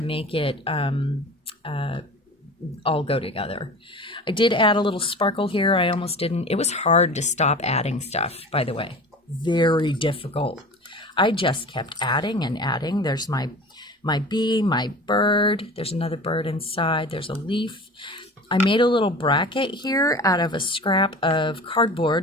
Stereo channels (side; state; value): both; normal; correlation 0.37